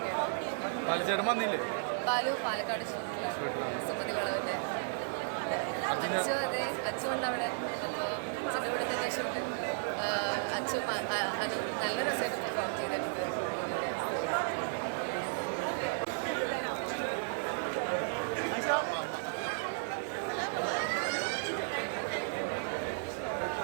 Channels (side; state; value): left; silent; digital silence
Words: ബാലചേട്ടൻ വന്നില്ലേ? ബാലു പാലക്കാട് സുമതി വളവിൻ്റെ അച്ചു, അതെ അച്ചു ഉണ്ട് അവിടെ. അപ്പോൾ അച്ഛൻ്റെ കൂടെ തന്നെ ഷൂട്ട്. അച്ചു അനു നല്ല രസമായിട്ട് പെർഫോം ചെയ്തിട്ടുണ്ട്.